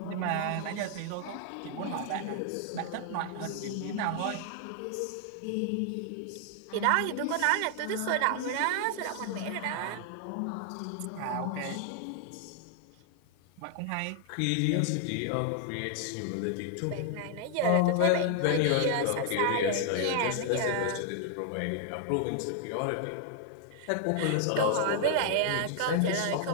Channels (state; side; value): different; both; correlation 0.00